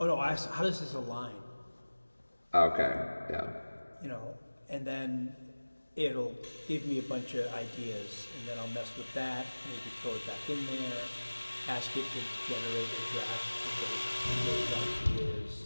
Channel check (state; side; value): inverted; both; correlation -1.00